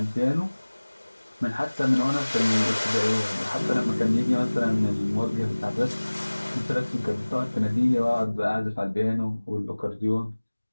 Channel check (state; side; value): inverted; both; correlation -1.00